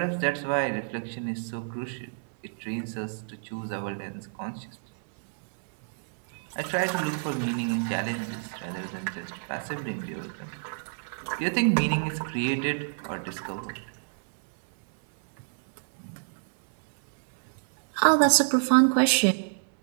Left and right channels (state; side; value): silent; left; 59 dB below the other